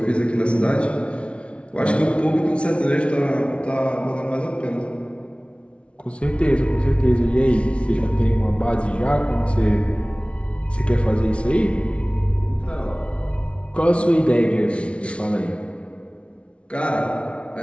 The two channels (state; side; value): late; right; 0.060 ms